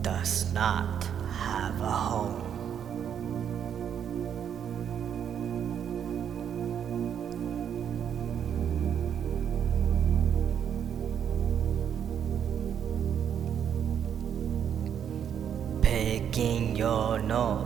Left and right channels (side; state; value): left; quieter; 8.6 dB